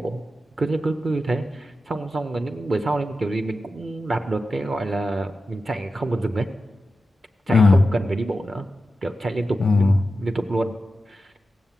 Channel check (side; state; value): both; normal; correlation 0.92